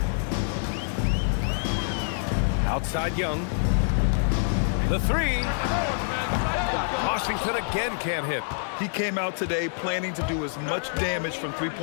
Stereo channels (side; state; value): right; silent; digital silence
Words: Outside Young. The 3. Washington again can't hit. He came out today planning to do as much damage from